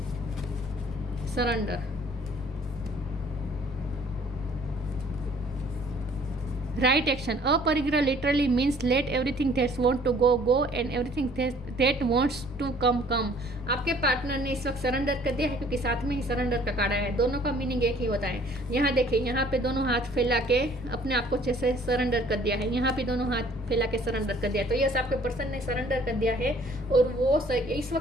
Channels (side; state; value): left; noise; rumble, 15 dB below the sound